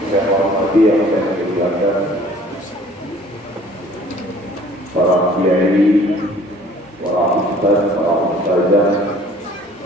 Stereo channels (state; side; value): normal; both; correlation 0.53